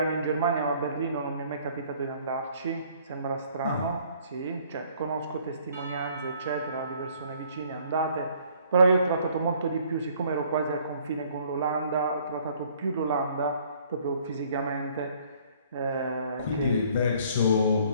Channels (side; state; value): both; inverted; correlation -0.59